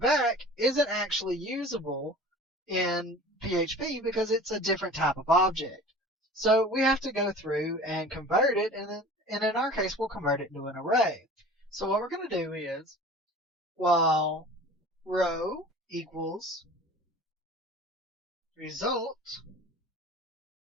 isn't actually usable in PHP because it's a different type of object. So we have to go through and convert it, and in our case, we'll convert it into an array. So what we're going to do is, while row equals result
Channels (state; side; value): normal; both; correlation 0.42